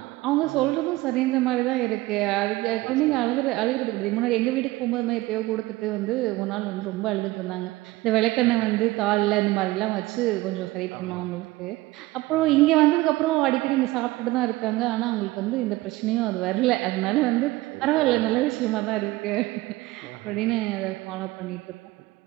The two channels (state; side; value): quieter; left; 19.1 dB